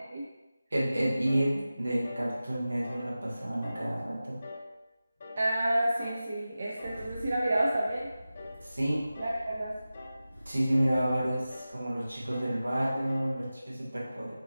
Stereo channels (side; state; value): both; inverted; correlation -0.95